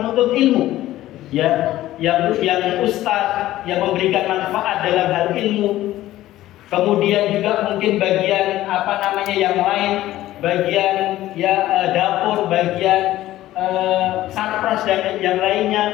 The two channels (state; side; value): quieter; right; 14.9 dB